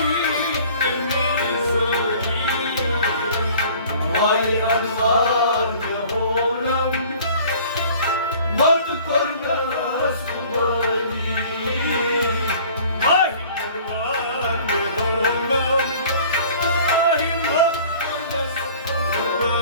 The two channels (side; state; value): both; inverted; correlation -0.49